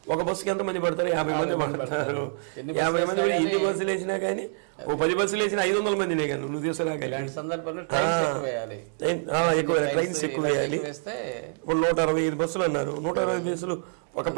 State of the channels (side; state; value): left; silent; 61 dB below the other